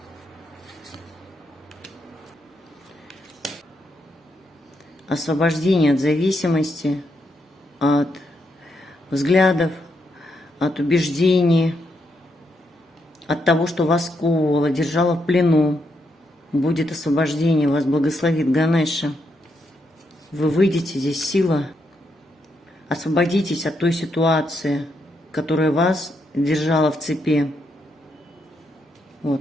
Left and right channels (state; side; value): normal; both; correlation 0.80